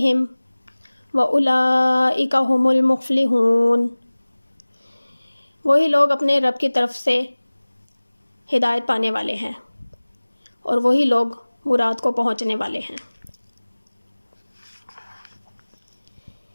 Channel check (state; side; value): inverted; both; correlation -1.00